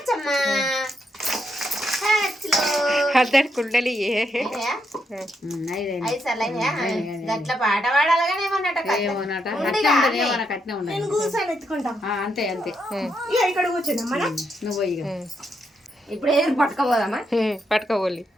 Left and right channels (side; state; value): both; normal; correlation 0.79